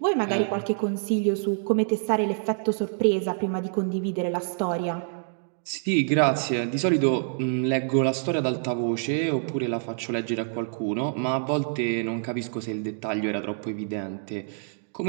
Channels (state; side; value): silent; left; digital silence